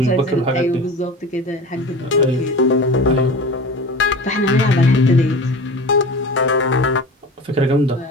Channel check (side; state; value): both; normal; correlation 0.34